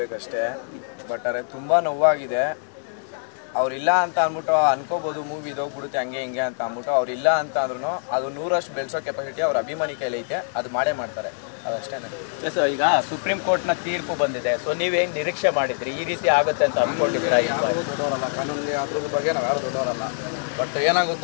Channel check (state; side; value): silent; right; digital silence